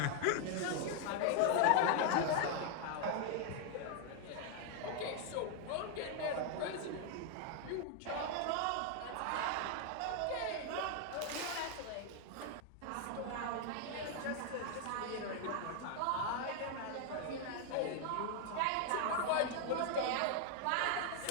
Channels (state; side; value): different; both; correlation 0.00